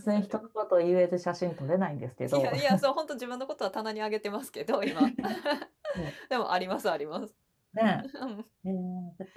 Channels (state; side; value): identical; both; correlation 1.00